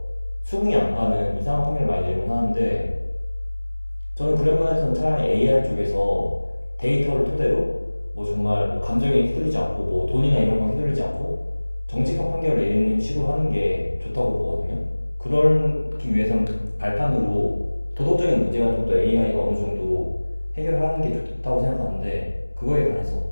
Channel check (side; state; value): both; inverted; correlation -1.00